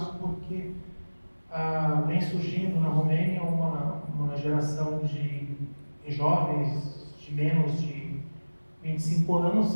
porque vem surgindo na Romênia uma geração de jovens de menos de 25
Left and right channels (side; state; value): both; inverted; correlation -1.00